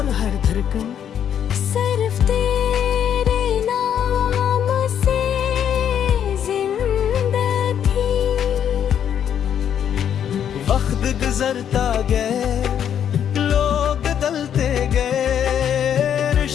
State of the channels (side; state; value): right; quieter; 9.1 dB